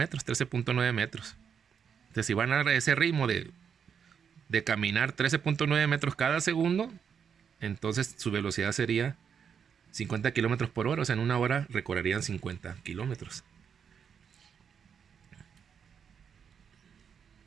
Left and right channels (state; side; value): quieter; left; 7.2 dB